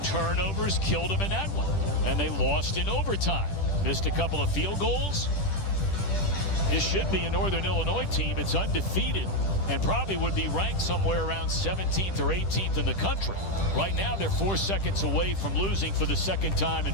turnovers killed them in that one, and they lost in overtime. Missed a couple of field goals. This should be a Northern Illinois team. It's undefeated and probably would be ranked somewhere around 17th or 18th in the country. Right now, they're 4 seconds away from losing for the 2nd time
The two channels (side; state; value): right; late; 10 ms